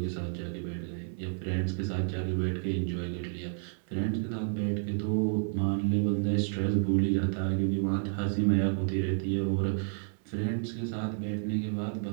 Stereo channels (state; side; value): silent; left; 57 dB below the other